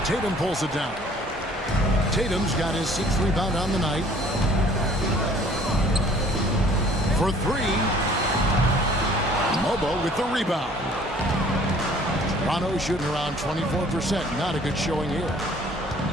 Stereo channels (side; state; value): both; normal; correlation 0.54